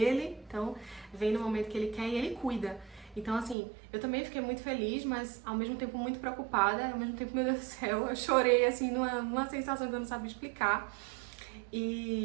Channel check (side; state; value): left; drops out; at 3.6 s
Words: então vem no momento que ele quer e ele cuida. Então, assim, eu também fiquei muito feliz, mas ao mesmo tempo muito preocupada, ao mesmo tempo, meu Deus do céu, eu chorei, assim, numa sensação que eu não sabia explicar.